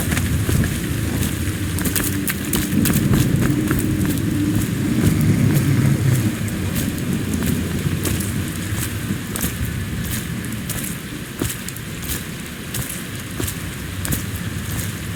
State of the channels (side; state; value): both; identical; correlation 1.00